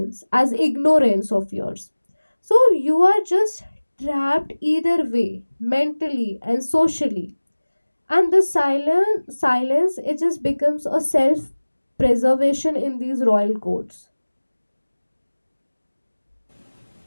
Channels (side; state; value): both; inverted; correlation -1.00